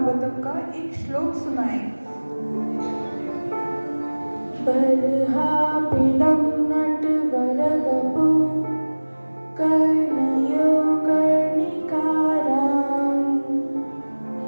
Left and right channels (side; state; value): both; inverted; correlation -1.00